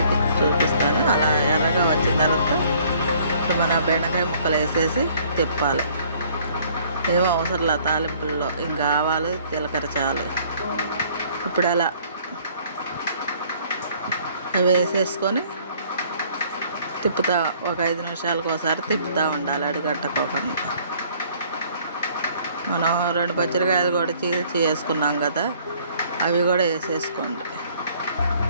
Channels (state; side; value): inverted; both; correlation -0.59